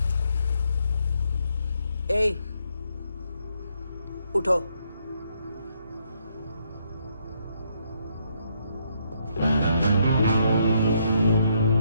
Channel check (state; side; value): inverted; both; correlation -0.74